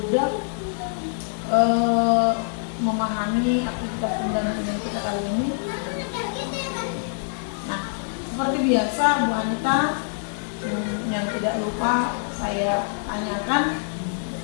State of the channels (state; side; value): silent; right; digital silence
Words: memahami aktivitas pendampingan kita kali ini. Nah, seperti biasa Bu Anita, yang tidak lupa saya tanyakan